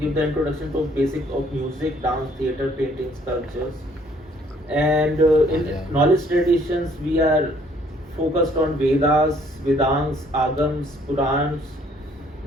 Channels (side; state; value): both; normal; correlation 0.62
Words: the introduction to basic of music, dance, theatre, painting, sculptures. And in knowledge traditions we are focused on Vedas, Vedants, Agams, Purans,